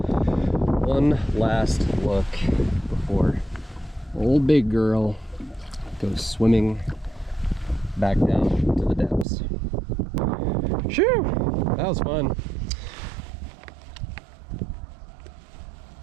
One last look before old big girl goes swimming back down to the depths. Shoo! That was fun.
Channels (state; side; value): drops out; left; at 9.2 s